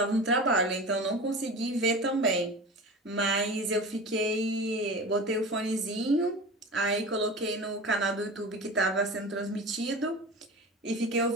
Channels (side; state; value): both; normal; correlation 0.33